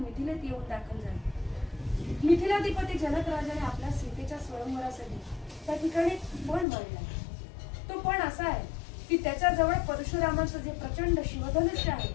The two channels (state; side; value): drops out; right; at 6.7 s